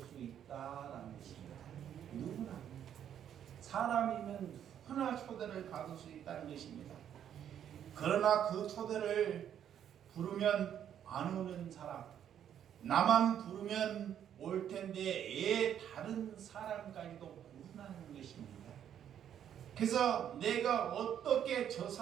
있다라는 것입니다. 누구나 사람이면 누구나 초대를 받을 수 있다는 것입니다. 그러나 그 초대를 부르면 안 오는 사람, 나만 부르면 올 텐데 애 다른 사람까지도 부르는 것입니다. 그래서 내가 어떻게 저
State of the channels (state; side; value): quieter; left; 9.6 dB